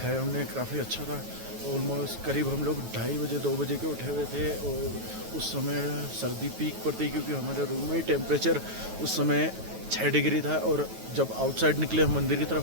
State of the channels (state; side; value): late; left; 9.3 ms